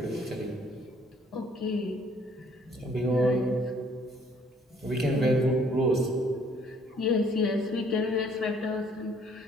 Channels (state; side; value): normal; both; correlation 0.61